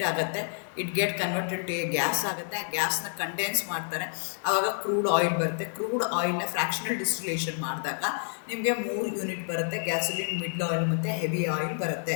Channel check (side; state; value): right; silent; 59 dB below the other